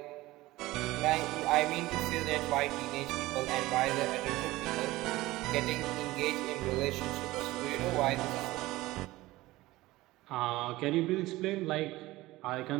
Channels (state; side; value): quieter; left; 18.5 dB